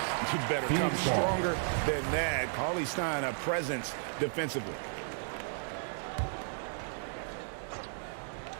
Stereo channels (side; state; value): left; silent; digital silence